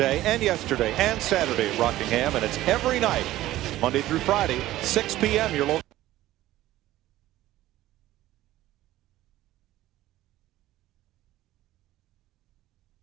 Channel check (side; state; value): left; quieter; 15.3 dB